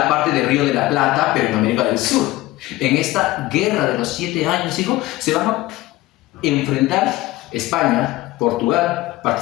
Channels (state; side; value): quieter; right; 17.6 dB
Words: parte del Río de la Plata, pero en América del Sur. En esta guerra de los 7 años, hijo, se van a enfrentar España, Portugal,